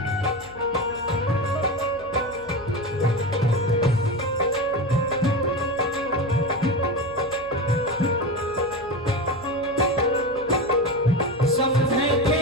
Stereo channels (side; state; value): left; noise; hum, 20 dB below the sound